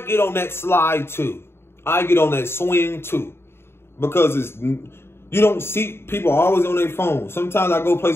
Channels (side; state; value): right; late; 0.12 ms